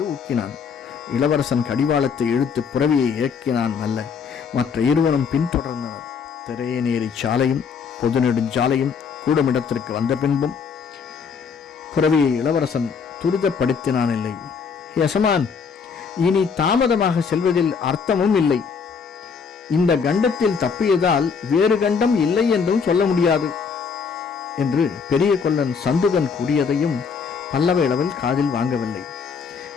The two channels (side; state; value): right; quieter; 5.9 dB